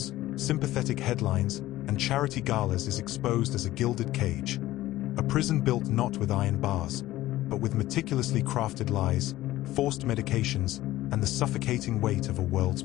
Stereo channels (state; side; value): quieter; right; 15.8 dB